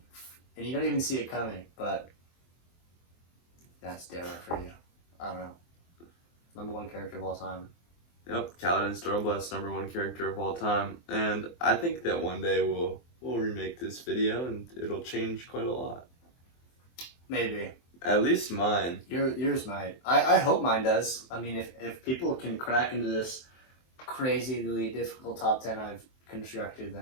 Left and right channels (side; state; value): right; late; 23 ms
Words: and you don't even see it coming. But that's Darrow for you. I don't know. #1 character of all time. Yep, Kaladin Stormblight's #1 character of all time, and I think that one day we'll remake this video and it'll change quite a lot. Maybe. At least mine. Yours might. I hope mine does. I mean, if people can crack into this crazily difficult top 10 I've constructed,